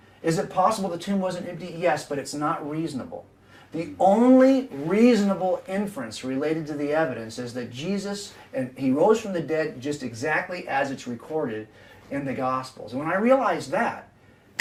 Is it possible the tomb wasn't empty? Yes, but it's not reasonable. The only reasonable inference related to the evidence is that Jesus, and he rose from the dead just exactly as it's recorded in the Gospels. And when I realized that,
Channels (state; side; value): identical; both; correlation 1.00